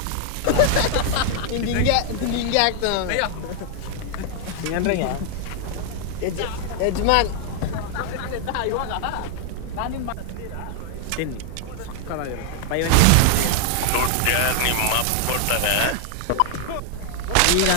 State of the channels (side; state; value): both; different; correlation 0.00